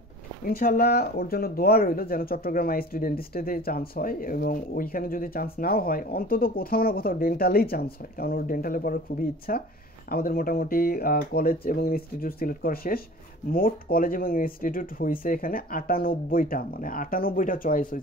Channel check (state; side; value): normal; both; correlation 0.43